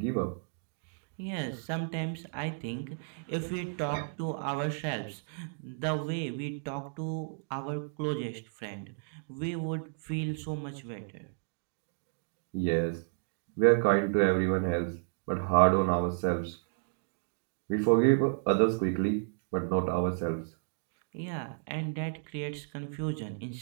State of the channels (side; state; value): left; silent; digital silence